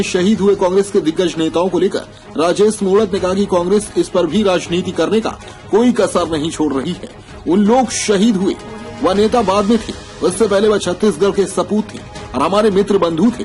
शहीद हुए कांग्रेस के दिग्गज नेताओं को लेकर राजेश मूणत ने कहा कि कांग्रेस इस पर भी राजनीति करने का कोई कसर नहीं छोड़ रही है। उन लोग शहीद हुए, वह नेता बाद में थे, उससे पहले वह छत्तीसगढ़ के सपूत थे और हमारे मित्र बंधु थे।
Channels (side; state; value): both; identical; correlation 1.00